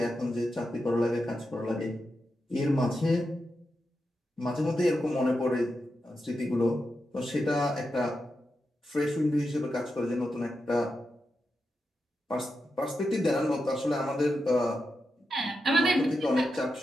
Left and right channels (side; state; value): both; normal; correlation 0.88